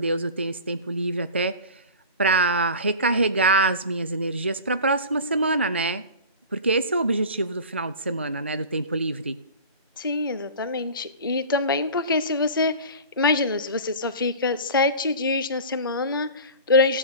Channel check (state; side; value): inverted; both; correlation -0.36